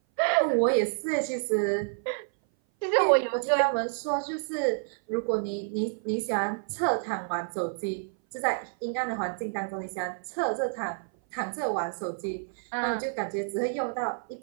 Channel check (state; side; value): silent; left; 57 dB below the other